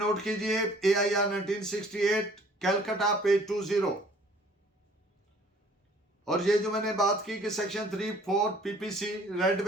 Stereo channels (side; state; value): both; normal; correlation 0.55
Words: कीजिए AIR 1968 कैलकाटा पेज 20। और ये जो मैंने बात की कि section 3-4 PPC read